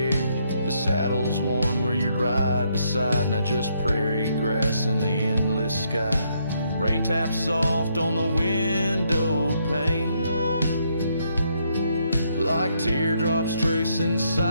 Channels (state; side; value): inverted; both; correlation -0.74